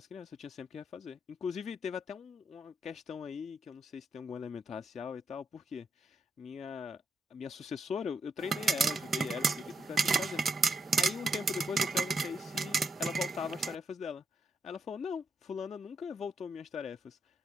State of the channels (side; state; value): both; normal; correlation 0.79